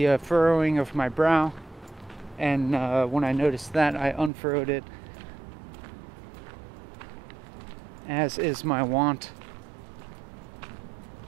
furrowing of my brow, and when I noticed that, I unfurrowed it, as is my wont.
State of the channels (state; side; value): drops out; left; at 4.3 s